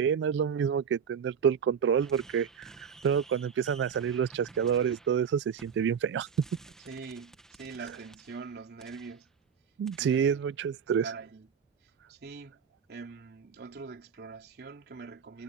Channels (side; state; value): left; quieter; 7.2 dB